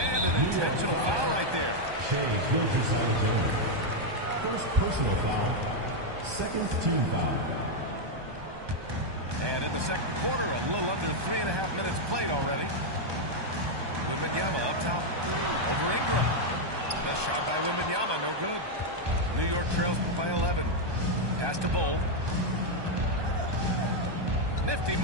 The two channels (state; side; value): late; left; 1.2 ms